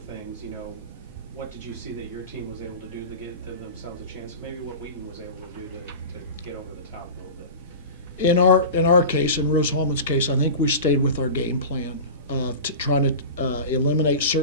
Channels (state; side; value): inverted; both; correlation -0.31